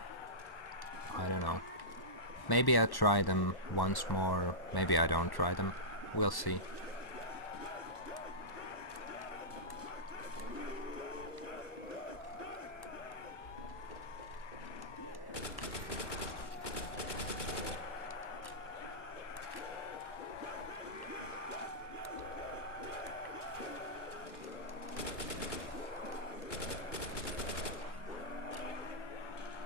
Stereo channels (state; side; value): late; right; 1.1 ms